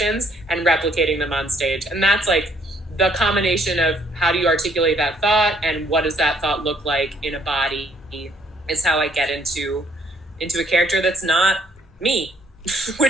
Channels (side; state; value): both; normal; correlation 0.65